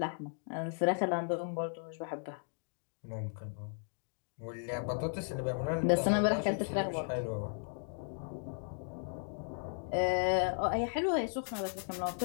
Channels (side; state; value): right; silent; digital silence